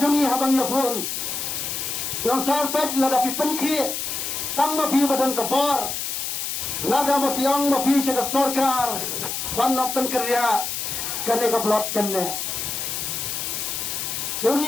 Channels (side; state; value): left; noise; hiss, 3 dB below the sound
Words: jongi habang ya pun. Yang sarpet ladapi penkhi. Tang mapi badan kebor. Nada mapi ang mapi syaka sorkar. Panok penkerja. Kene keblok kene.